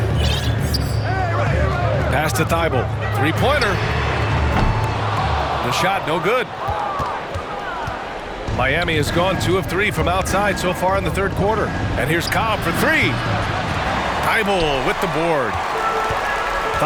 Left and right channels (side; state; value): both; identical; correlation 1.00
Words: Pass to Thibault. Three-pointer. The shot, no good. Miami has gone 2 of 3 from outside so far in the third quarter. And here's Cobb for 3. Thibault with the board.